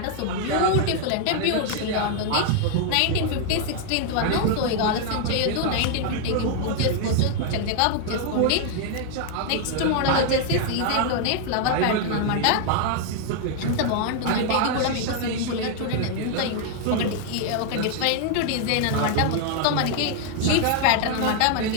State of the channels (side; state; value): both; different; correlation 0.00